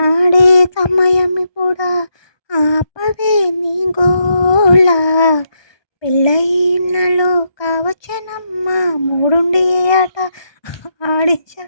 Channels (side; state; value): right; late; 1.2 ms